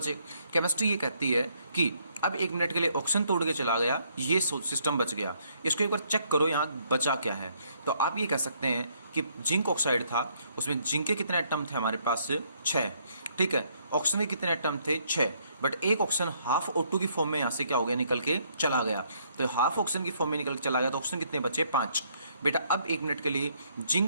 केमिस्ट्री ये कहती है कि अब 1 मिनट के लिए ऑक्सीजन तोड़ के चला गया, ये सिस्टम बच गया। इसको एक बार चेक करो यहाँ बचा क्या है। तो आप ये कह सकते हैं कि जिंक ऑक्साइड था, उसमें जिंक के कितने एटम थे हमारे पास, 6, ठीक है। ऑक्सीजन के कितने एटम थे, 6, बट एक ऑक्सीजन हाफ O2 की फॉर्म में यहाँ से क्या हो गया, निकल के चला गया। तो हाफ ऑक्सीजन की फॉर्म में निकल के चला गया, तो ऑक्सीजन कितने बचे, 5। बेटा अब 1 मिनट के लिए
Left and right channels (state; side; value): inverted; both; correlation -0.69